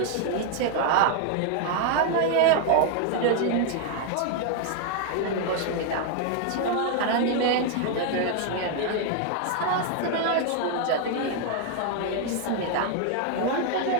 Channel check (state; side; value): different; both; correlation 0.00